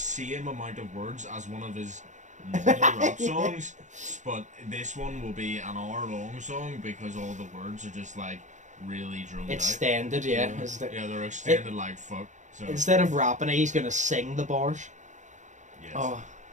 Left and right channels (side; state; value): left; late; 0.35 ms